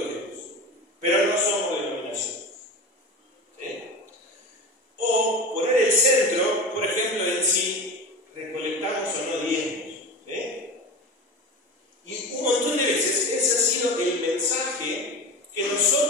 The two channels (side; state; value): both; normal; correlation 0.28